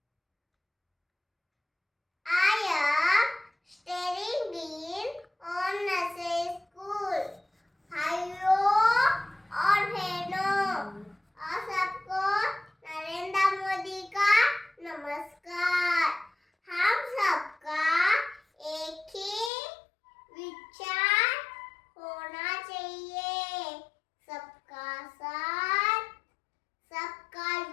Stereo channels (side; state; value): right; drops out; at 19.5 s